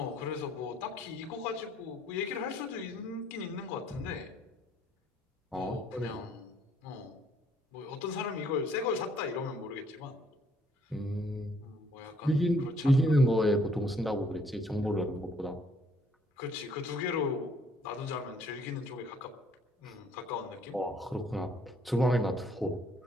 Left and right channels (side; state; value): both; normal; correlation 0.64